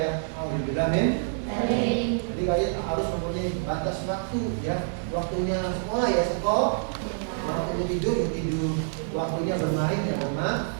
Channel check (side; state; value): left; silent; digital silence